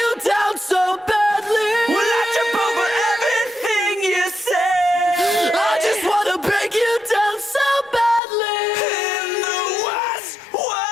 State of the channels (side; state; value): right; drops out; at 8.2 s